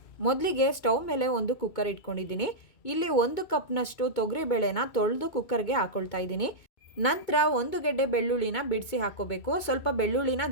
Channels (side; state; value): right; late; 2.2 ms